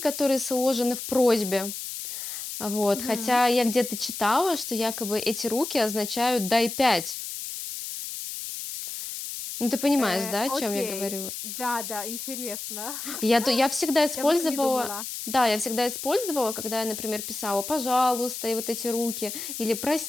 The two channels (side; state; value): left; noise; hiss, 7 dB below the sound